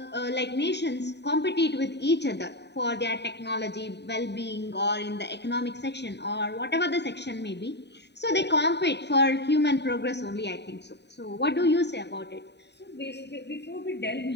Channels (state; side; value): late; right; 0.50 ms